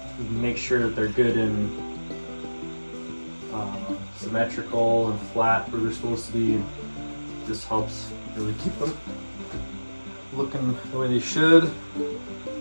can make sure that they're good and symmetrical and flat where they're supposed to be. This helps really keep them looking the way they should.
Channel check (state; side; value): inverted; both; correlation -1.00